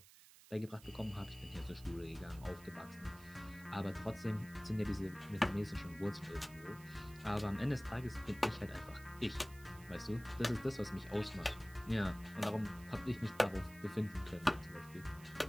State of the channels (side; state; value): right; noise; hiss, 21 dB below the sound